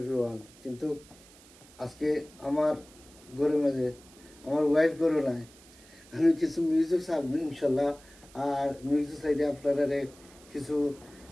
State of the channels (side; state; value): right; noise; hiss, 24 dB below the sound